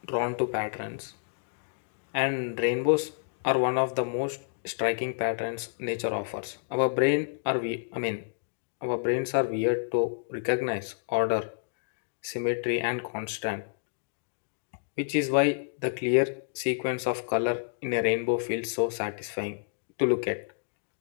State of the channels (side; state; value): right; silent; digital silence